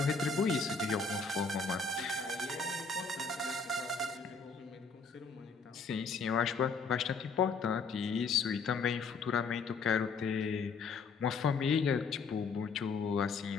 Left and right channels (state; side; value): quieter; right; 4.8 dB